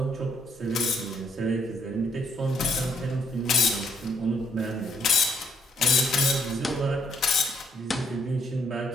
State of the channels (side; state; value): both; normal; correlation 0.70